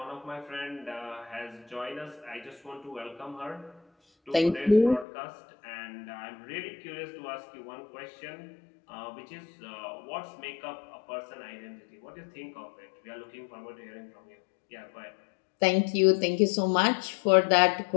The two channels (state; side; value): drops out; right; at 5.1 s